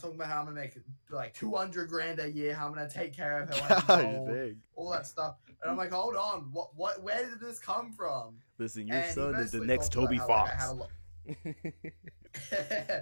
about how I'm gonna make like $200,000 a year. How I'm gonna take care of her when she's old, Dang. all that stuff. And I'm like, hold on, what? Where did this come from? Listen, your And he son is the basically next talked Toby about how, like, I Fox. had a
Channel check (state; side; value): inverted; both; correlation -1.00